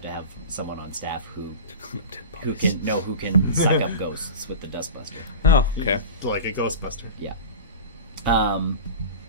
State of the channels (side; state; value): both; inverted; correlation -0.30